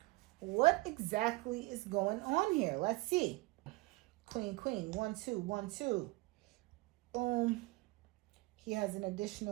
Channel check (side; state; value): left; quieter; 23.1 dB